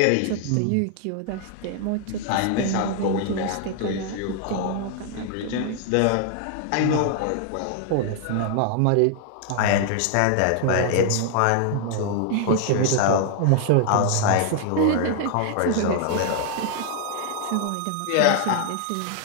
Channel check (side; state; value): both; different; correlation 0.00